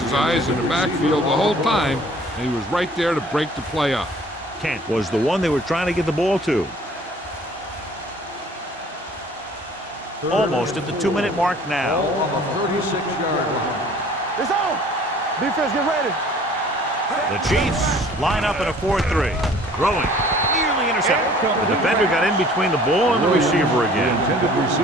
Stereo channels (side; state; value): both; normal; correlation 0.52